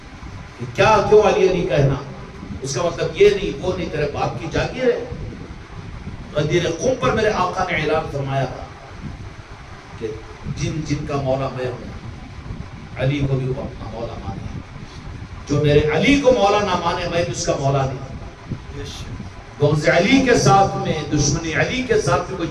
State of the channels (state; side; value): identical; both; correlation 1.00